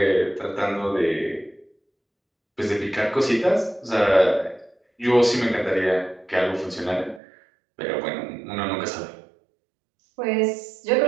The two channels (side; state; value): left; drops out; at 7.2 s